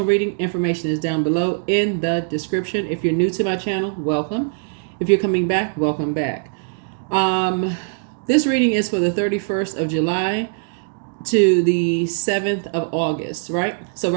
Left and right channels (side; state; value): left; silent; digital silence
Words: reading, information is down below in the description. If you're new to my channel, welcome. If you're coming back, welcome back. This reading is for the 31st of July to the 7th of August, right? So